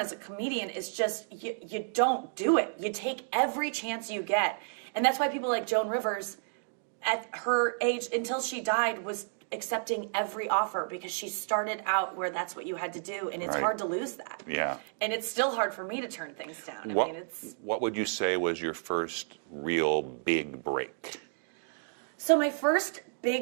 a comedian is just, you don't do it. You take every chance you get. And that's why people like Joan Rivers, at her age, until she died, was accepting every offer, because she started out where that's what you had to do, and it's hard to lose that. Yeah. And it's still hard for me to turn things down. What would you say was your first real big break? So my first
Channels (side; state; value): left; silent; digital silence